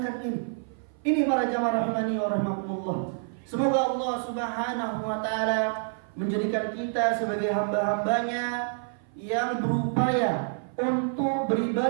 ini. Ini para jamaah rahimani wa rahimakumullah. Semoga Allah Subhanahu wa taala menjadikan kita sebagai hamba-hambanya yang berupaya untuk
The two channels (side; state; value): left; silent; 55 dB below the other